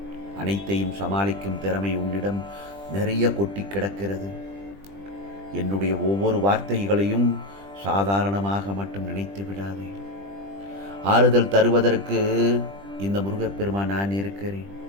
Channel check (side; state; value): left; late; 20 ms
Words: அனைத்தையும் சமாளிக்கும் திறமை உன்னிடம் நிறைய கொட்டி கிடக்கிறது. என்னுடைய ஒவ்வொரு வார்த்தைகளையும் சாதாரணமாக மட்டும் நினைத்து விடாதே. ஆறுதல் தருவதற்கு இந்த முருகப்பெருமான் நான் இருக்கிறேன்.